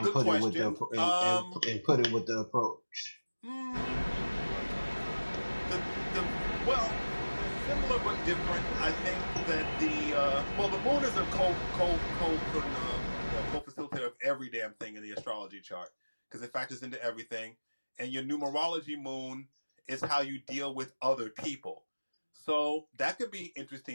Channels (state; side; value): inverted; both; correlation -1.00